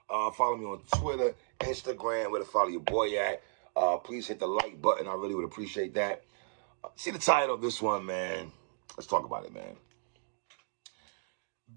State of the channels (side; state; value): left; silent; digital silence